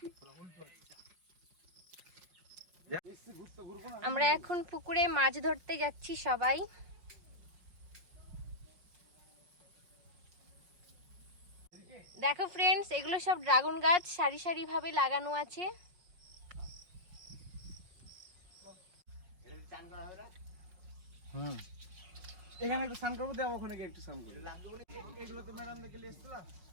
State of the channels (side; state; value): left; late; 5.6 ms